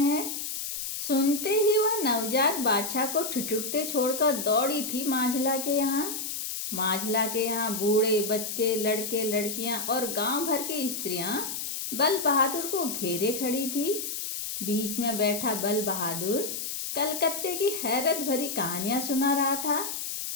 सुनते ही वह नवजात बाछा को ठिठुरते छोड़कर दौड़ी थी माझला के यहाँ। माझला के यहाँ बूढ़े बच्चे, लड़के लड़कियाँ और गांव भर की स्त्रियाँ बल बहादुर को घेरे खड़ी थी। बीच में बैठा बल बहादुर कलकत्ते की हैरत भरी कहानियां सुना रहा था।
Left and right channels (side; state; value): left; noise; hiss, 5 dB below the sound